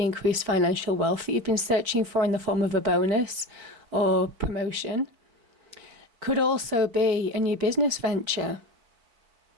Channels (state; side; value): late; left; 4.2 ms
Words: increased financial wealth that you've been searching for in the form of a bonus or promotion. Could also be a new business venture,